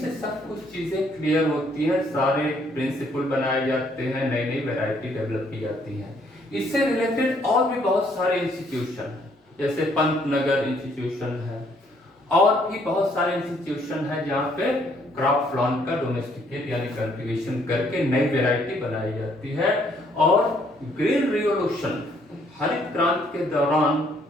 से सब कुछ चीजें क्लियर होती हैं, सारे प्रिंसिपल बनाए जाते हैं, नई नई वैरायटी डेवलप की जाती है। इससे रिलेटेड और भी बहुत सारे इंस्टीट्यूशन हैं, जैसे पंतनगर इंस्टीट्यूशन है, और भी बहुत सारे इंस्टीट्यूशन है जहाँ पे क्रॉप प्लांट का डोमेस्टिकेट यानी कल्टीवेशन करके नई वैरायटी बनाई जाती है। और ग्रीन रिवोल्यूशन, हरित क्रांति के दौरान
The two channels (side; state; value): both; normal; correlation 0.67